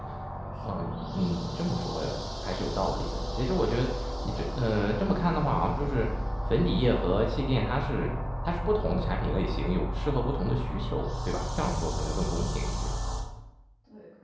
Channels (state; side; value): identical; both; correlation 1.00